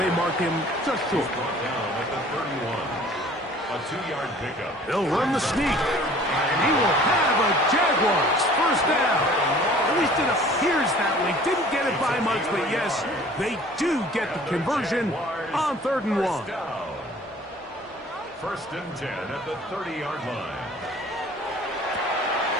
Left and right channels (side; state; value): both; normal; correlation 0.50